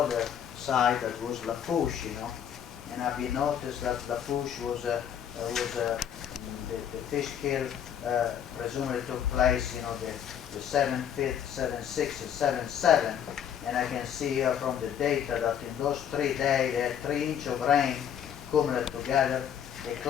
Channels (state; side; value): quieter; right; 9.0 dB